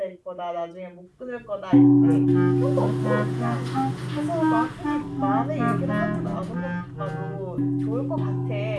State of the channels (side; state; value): both; identical; correlation 1.00